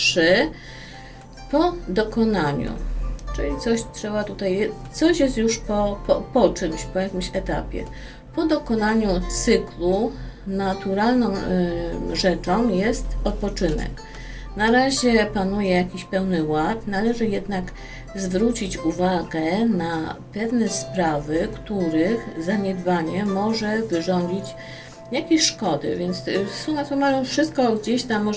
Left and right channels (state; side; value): identical; both; correlation 1.00